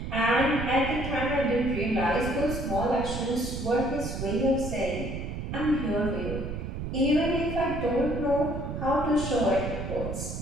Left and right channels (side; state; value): right; noise; rumble, 5 dB below the sound